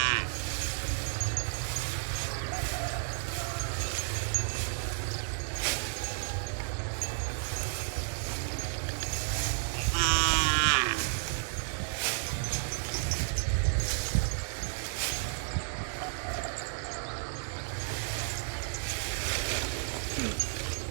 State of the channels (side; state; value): left; silent; digital silence